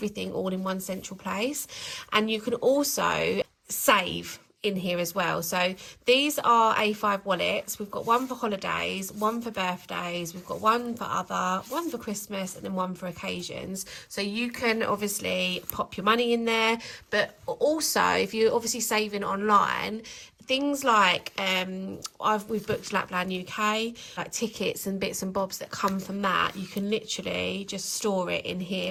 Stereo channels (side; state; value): both; identical; correlation 1.00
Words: all in one central place. And you can also save in here as well. So these are A5 wallets. We've got one for holidays, one for birthdays, we've got one for other, one for Christmas, and then one for occasions. So you can obviously pop your money in there, but also if you're obviously saving online, things like we've booked Lapland UK, like tickets and bits and bobs that come from that, you can literally just store it in